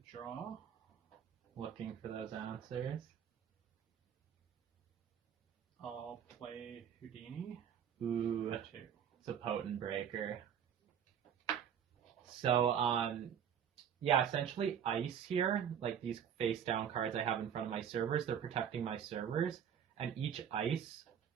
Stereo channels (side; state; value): left; quieter; 8.6 dB